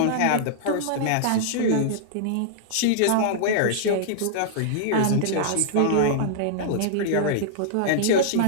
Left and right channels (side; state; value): both; different; correlation -0.01